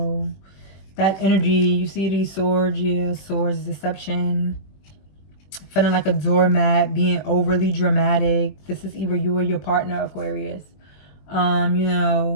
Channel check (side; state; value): right; late; 21 ms